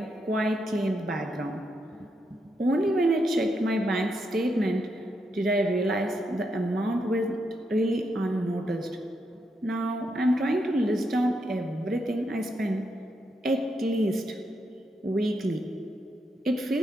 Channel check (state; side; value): normal; both; correlation 0.81